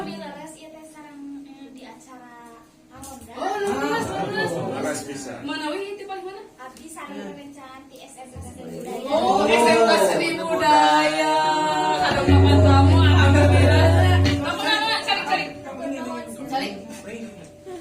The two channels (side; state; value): both; identical; correlation 1.00